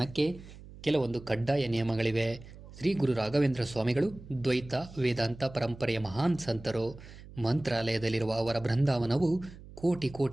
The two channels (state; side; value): noise; right; hum, 17 dB below the sound